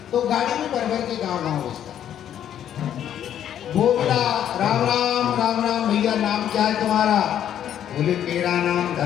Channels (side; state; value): right; quieter; 10.2 dB